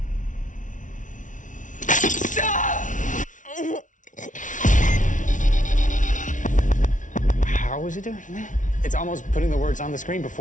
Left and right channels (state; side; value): late; right; 0.37 ms